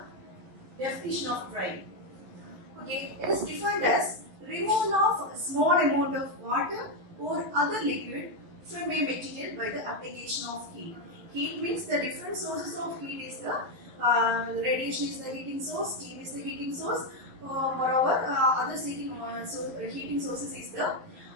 definition of drying. Okay, it is defined as removal of a small amount of water or other liquid from a material by the application of heat. Heat means the different sources of heat is the radiation is the heating source, steam is the heating source. Moreover, other heating sources is the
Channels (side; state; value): left; late; 11 ms